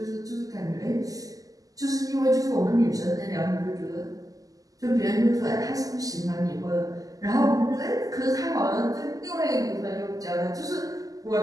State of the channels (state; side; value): late; left; 0.17 ms